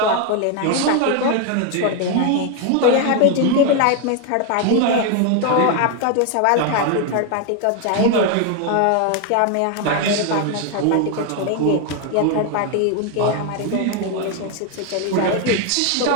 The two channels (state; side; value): different; both; correlation 0.01